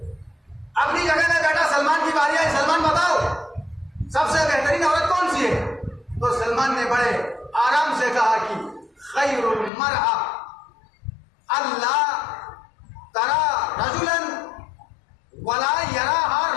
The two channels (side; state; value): right; drops out; at 9.7 s